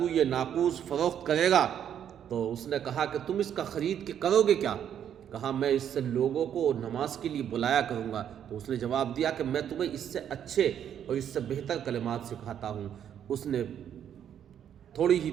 یہ ناقوس فروخت کرے گا؟ تو اس نے کہا کہ تم اس کا خرید کے کرو گے کیا؟ کہا میں اس سے لوگوں کو نماز کے لیے بلایا کروں گا۔ تو اس نے جواب دیا کہ میں تمہیں اس سے اچھے اور اس سے بہتر کلمات سکھاتا ہوں۔ اس نے تھوڑی ہی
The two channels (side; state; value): left; quieter; 9.4 dB